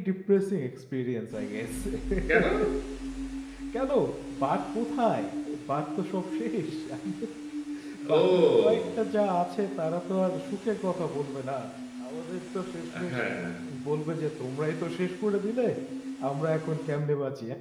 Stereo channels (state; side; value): identical; both; correlation 1.00